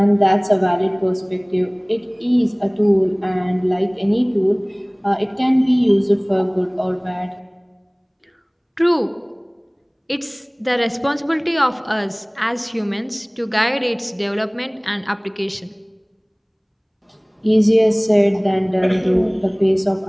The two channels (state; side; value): identical; both; correlation 1.00